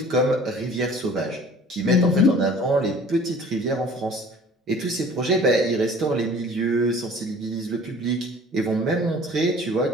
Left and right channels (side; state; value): both; normal; correlation 0.48